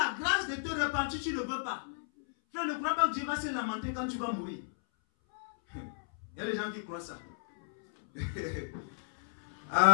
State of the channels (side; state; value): right; silent; 56 dB below the other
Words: grâce de te repentir, tu ne veux pas. Frère, ne crois pas que Dieu va se lamenter quand tu vas mourir. Il y a des gens qui croient ça.